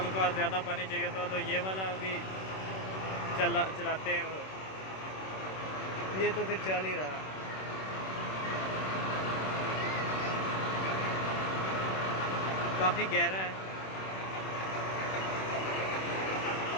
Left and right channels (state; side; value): late; right; 26 ms